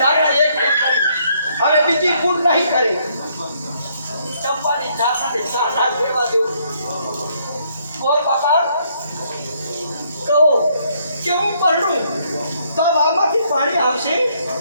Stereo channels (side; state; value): both; inverted; correlation -0.70